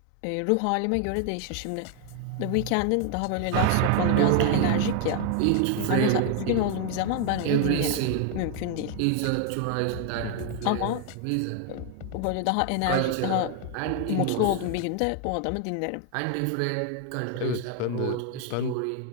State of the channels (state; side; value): different; both; correlation 0.01